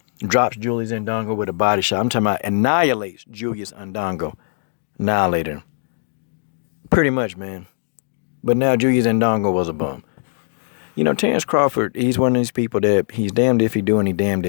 drops Julius Ndongo with a body shot. I'm talking about annihilates Julius Ndongo. Annihilated him. Pretty much, man. But now Julius Ndongo was a bum. You know, Terence Crawford, he's one of these people that he's damned if he do and he damned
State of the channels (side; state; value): right; silent; digital silence